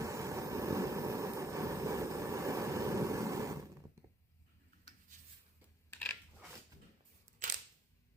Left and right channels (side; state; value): both; normal; correlation 0.71